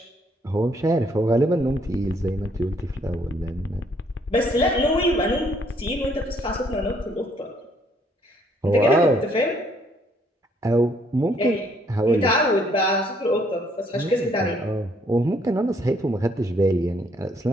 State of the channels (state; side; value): normal; both; correlation 0.67